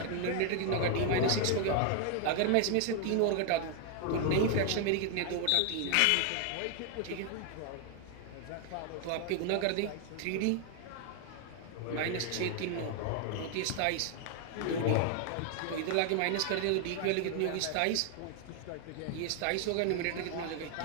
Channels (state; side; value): different; both; correlation 0.00